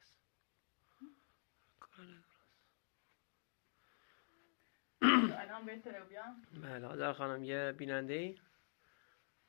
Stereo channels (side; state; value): right; silent; digital silence